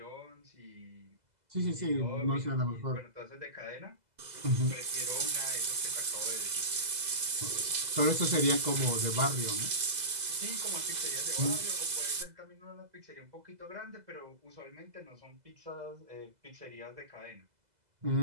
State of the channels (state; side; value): late; left; 2.0 ms